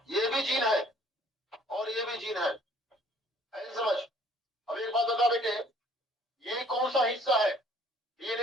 ये भी जीन है, और ये भी जीन है। ऐसे समझ। अब एक बात बता बेटे, ये कौन सा हिस्सा है?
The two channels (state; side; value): normal; both; correlation 0.58